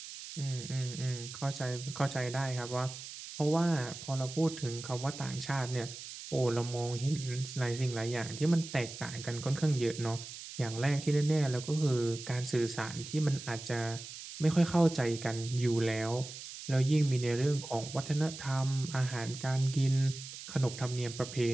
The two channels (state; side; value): noise; right; hiss, 11 dB below the sound